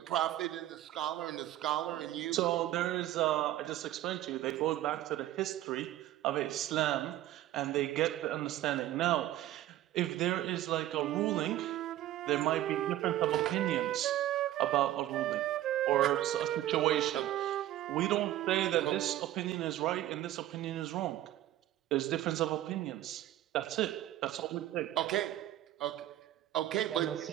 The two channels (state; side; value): quieter; left; 13.9 dB